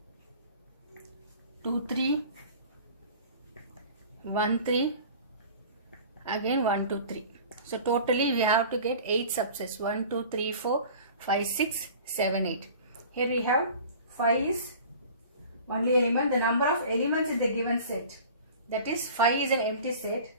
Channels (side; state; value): both; inverted; correlation -0.42